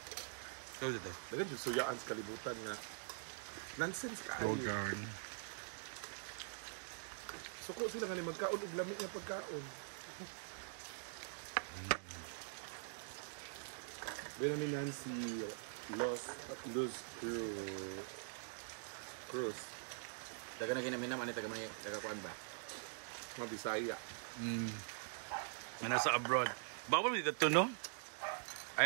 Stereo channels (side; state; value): left; silent; digital silence